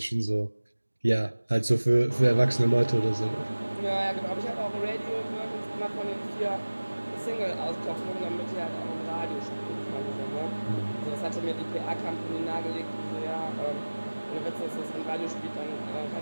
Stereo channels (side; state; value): both; inverted; correlation -1.00